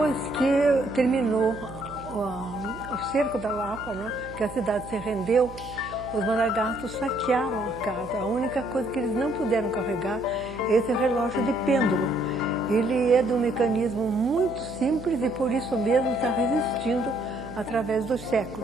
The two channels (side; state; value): right; noise; hum, 15 dB below the sound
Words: que terminou o cerco da Lapa, né, que a cidade se rendeu, os Maragatos saquearam a casa. A única coisa que eles não puderam carregar é esse relógio de pêndulo. Ele é de um mecanismo muito simples e por isso mesmo está resistindo através dos